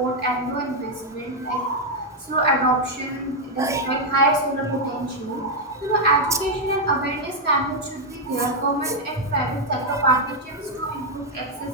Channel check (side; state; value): both; normal; correlation 0.00